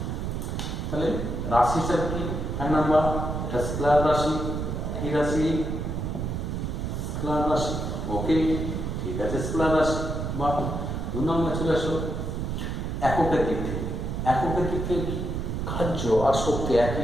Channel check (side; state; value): right; noise; rumble, 3 dB below the sound